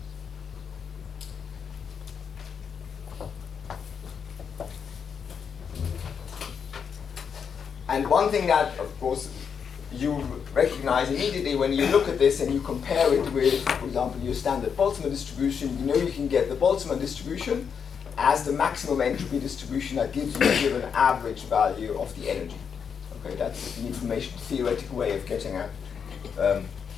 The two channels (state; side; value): quieter; right; 6.8 dB